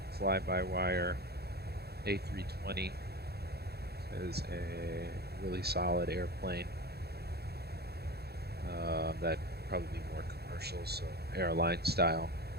fly-by-wire A320 is a really solid airplane. That'd probably be more commercial, so airline style.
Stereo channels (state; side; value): late; left; 0.47 ms